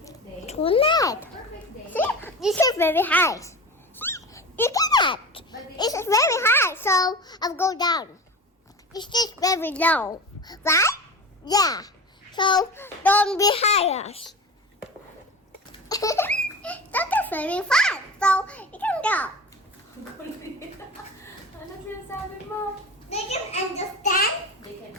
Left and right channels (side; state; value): both; normal; correlation 0.30